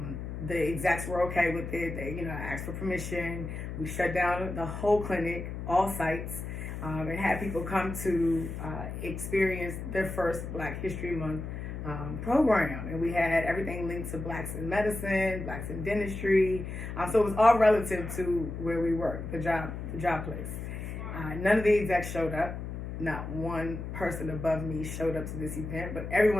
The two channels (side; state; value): left; noise; hum, 7 dB below the sound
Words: The execs were okay with it. They, you know, asked for permission. We shut down the whole clinic, all sites, and had people come to experience their first Black History Month program. And we had everything linked to Blacks in medicine, Blacks in dentistry. So it was all relative to where we worked, the job place. None of the execs showed up. Not one person above me showed up to this event, but